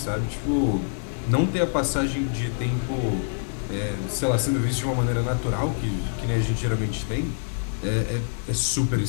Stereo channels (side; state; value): right; silent; digital silence